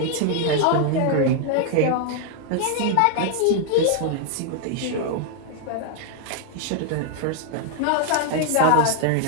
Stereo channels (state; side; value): different; both; correlation 0.00